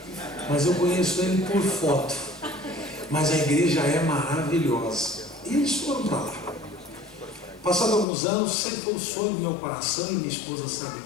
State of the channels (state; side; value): drops out; right; at 8.1 s